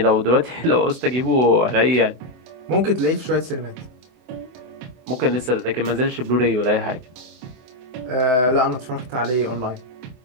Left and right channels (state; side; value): late; left; 24 ms